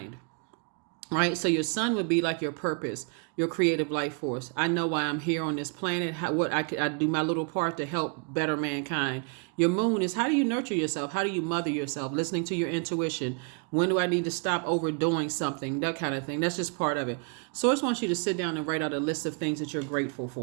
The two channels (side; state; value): left; quieter; 37.1 dB